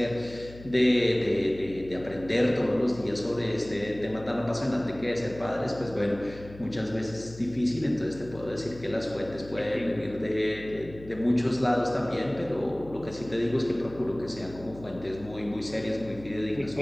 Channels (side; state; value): left; noise; hum, 17 dB below the sound